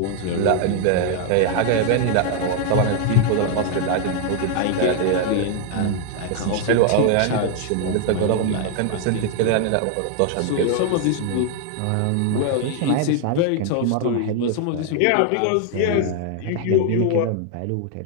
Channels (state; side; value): different; both; correlation 0.00